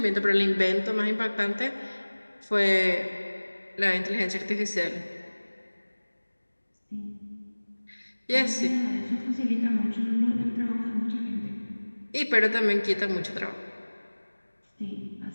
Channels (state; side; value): inverted; both; correlation -1.00